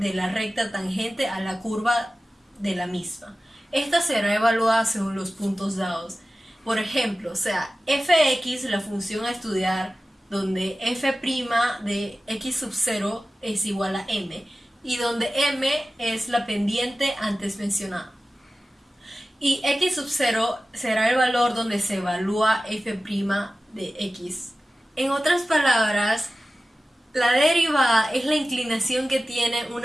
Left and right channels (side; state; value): both; normal; correlation 0.95